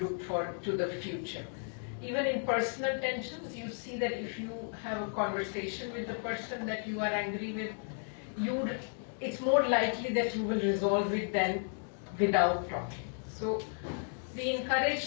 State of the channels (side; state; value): right; silent; 55 dB below the other